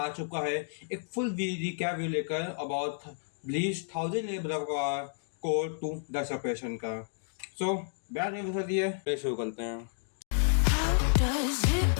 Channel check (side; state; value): right; silent; digital silence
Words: चुका है एक फुल रिकैप लेकर अबाउट ब्लीच 1000 ब्लड वॉक आर कोर 2 द सेपरेशन का। सो बैठ में बता दिए, शुरू करते हैं। How does